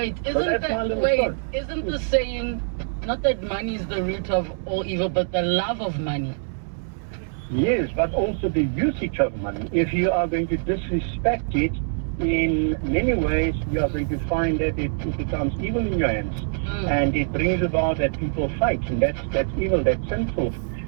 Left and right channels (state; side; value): silent; left; digital silence